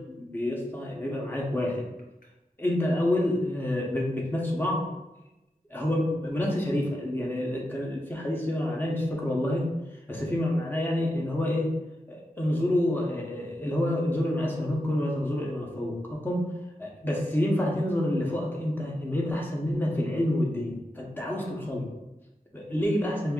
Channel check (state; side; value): normal; both; correlation 0.87